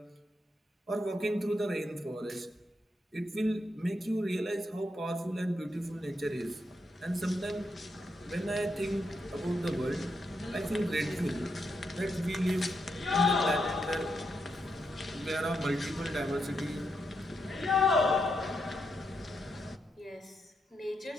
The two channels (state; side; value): normal; both; correlation 0.82